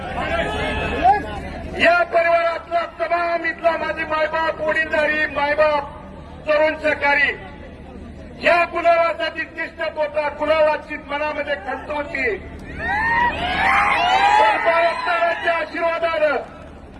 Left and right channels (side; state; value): both; identical; correlation 1.00